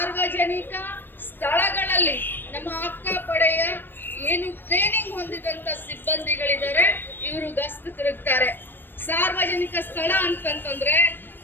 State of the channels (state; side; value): late; right; 0.095 ms